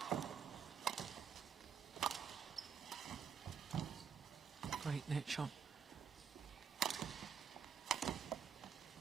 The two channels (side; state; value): left; quieter; 7.0 dB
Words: Great net shot.